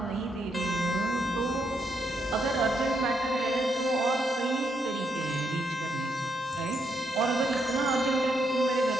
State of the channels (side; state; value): both; normal; correlation 0.78